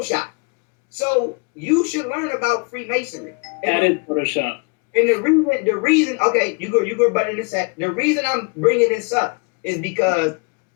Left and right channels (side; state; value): right; quieter; 33.1 dB